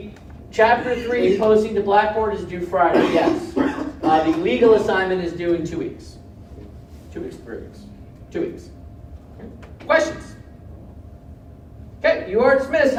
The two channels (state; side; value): identical; both; correlation 1.00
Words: Chapter 3 posting to Blackboard is due Friday, yes. The legal assignment is due in 2 weeks. 2 weeks, 3 weeks. 2 weeks. Okay. Questions? Okay, you are dismissed.